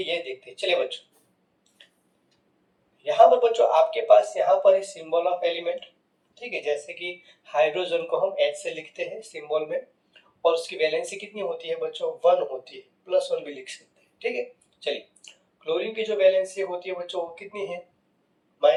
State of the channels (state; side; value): identical; both; correlation 1.00